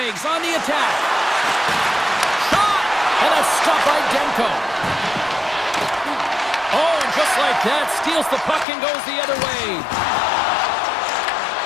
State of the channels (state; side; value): drops out; right; at 8.7 s